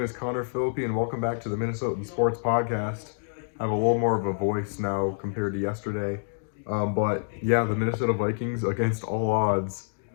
is Connor Philippi, and welcome back to the Minnesotan Sports Podcast. I have a little more of a voice now compared to yesterday. But yeah, the Minnesota Vikings, against all odds,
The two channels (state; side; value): silent; right; digital silence